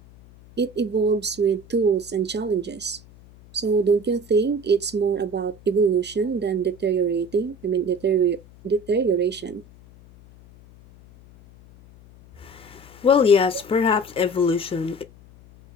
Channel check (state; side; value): noise; left; hum, 23 dB below the sound